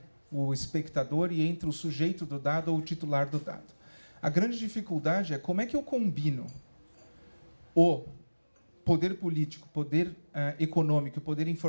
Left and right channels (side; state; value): both; inverted; correlation -1.00